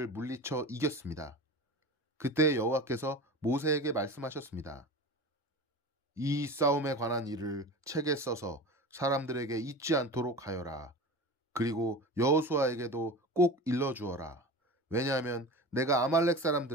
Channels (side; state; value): both; normal; correlation 0.32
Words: 물리쳐 이겼습니다. 그때 여호와께서 모세에게 말씀하셨습니다. 이 싸움에 관한 일을 책에 써서 사람들에게 잊지 않도록 하여라. 그리고 여호수아에게도 꼭 일러주어라. 왜냐하면 내가 아말렉